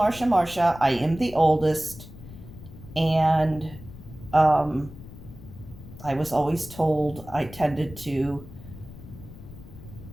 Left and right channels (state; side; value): noise; left; rumble, 16 dB below the sound